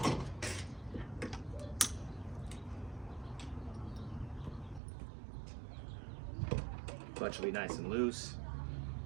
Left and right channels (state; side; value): drops out; left; at 4.8 s